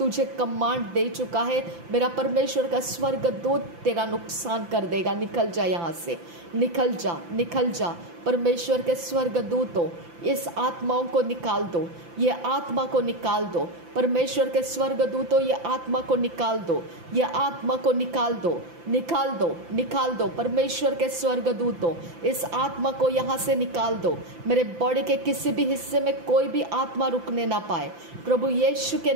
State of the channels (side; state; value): left; late; 5.9 ms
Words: कमांड दे चुका है। मेरा परमेश्वर का स्वर्गदूत तेरा नुकसान कर देगा। निकल जा यहाँ से, निकल जा, निकल जा। परमेश्वर के स्वर्गदूतों इस आत्माओं को निकाल दो, ये आत्मा को निकाल दो। परमेश्वर के स्वर्गदूतों ये आत्मा को निकाल दो, ये आत्मा को निकाल दो, निकाल दो, निकाल दो। परमेश्वर के स्वर्गदूतों इस आत्मा को यहाँ से निकाल दो। मेरे बॉडी के किसी भी हिस्से में कोई भी आत्मा रुकने ना पाए। प्रभु यीशु के